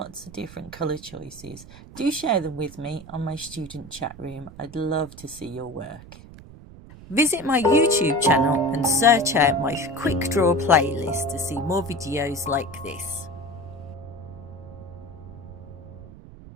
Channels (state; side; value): noise; right; rumble, 17 dB below the sound